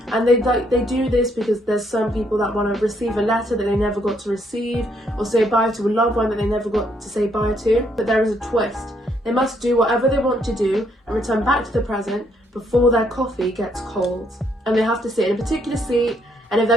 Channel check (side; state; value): both; normal; correlation 0.71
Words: And they do this because there's some people that want to receive a letter that they never got to receive, or say bye to a loved one that they never got to say bye to. But there is a twist. They must do whatever they want to do and return back to the present before their coffee gets cold. And they have to sit in a particular seat, and if